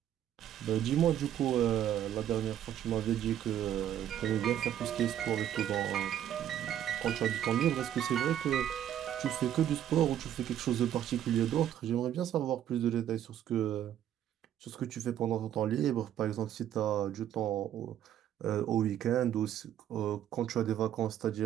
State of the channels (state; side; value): quieter; left; 10.8 dB